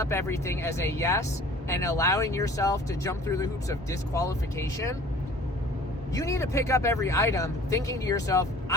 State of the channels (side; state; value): both; normal; correlation 0.48